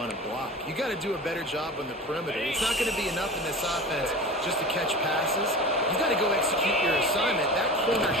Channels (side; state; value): both; normal; correlation 0.33